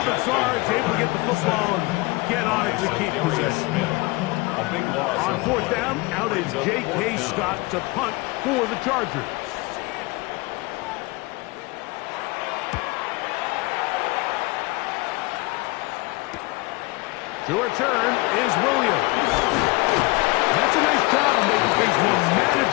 Bazzar is able to get the football and get on it to keep possession. On 4th down, out is J.K. Scott to punt for the Chargers. To return is Williams. That's a nice job of making things more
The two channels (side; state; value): right; quieter; 23.8 dB